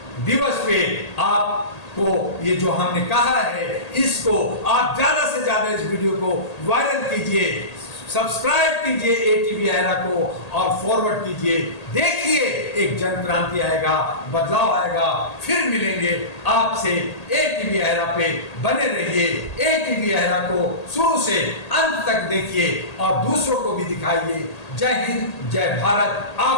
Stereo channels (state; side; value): late; right; 1.8 ms